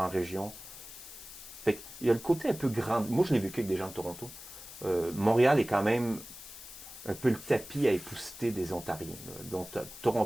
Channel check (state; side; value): noise; left; hiss, 14 dB below the sound